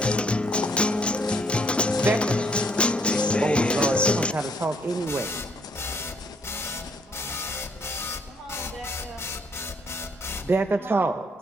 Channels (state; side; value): normal; both; correlation 0.68